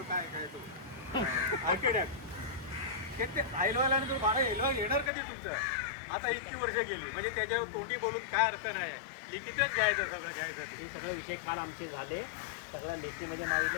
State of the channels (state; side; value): drops out; right; at 5.1 s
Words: काय तो आर्किटेक्ट ते एलवायला तो भाडं एलवाय येणार कधी तुमचं? आता इतकी वर्ष गेली, म्हणजे त्याच्यावर तोंडी बोलून काय अर्थ नाही. लिखितच घ्यायचं, सगळं घ्यायचं. हे सगळे विषय काल आमचे झाले, सगळ्या लेखीमध्ये मागितले,